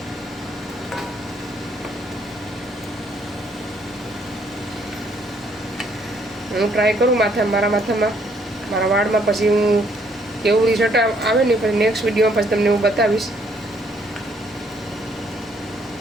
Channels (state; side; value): normal; both; correlation 0.67